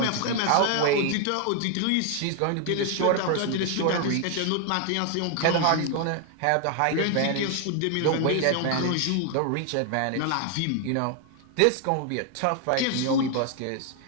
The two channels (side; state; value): both; different; correlation 0.00